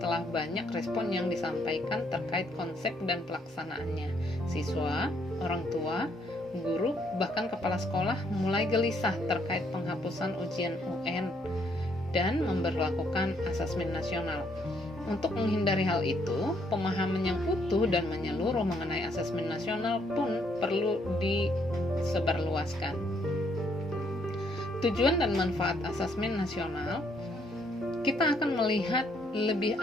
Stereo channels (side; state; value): both; normal; correlation 0.70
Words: telah banyak respon yang disampaikan terkait konsep dan pelaksanaannya. Siswa, orang tua, guru, bahkan kepala sekolah mulai gelisah terkait penghapusan ujian UN dan memberlakukan asesmen nasional. Untuk menghindari hal itu, pemahaman yang utuh dan menyeluruh mengenai asesmen nasional pun perlu disebarluaskan. Tujuan dan manfaat asesmen nasional, kita akan melihat lebih